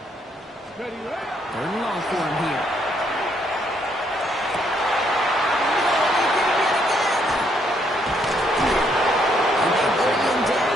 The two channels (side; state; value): both; normal; correlation 0.72